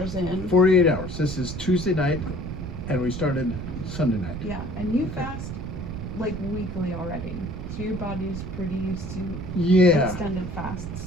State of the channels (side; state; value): right; noise; rumble, 7 dB below the sound